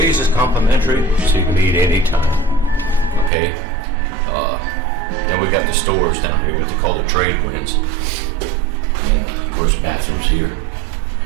is complimentary, so you can eat anytime. Okay? Then we got the stores down here, what they call the trade winds. And of course, bathrooms here.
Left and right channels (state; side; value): drops out; left; at 3.3 s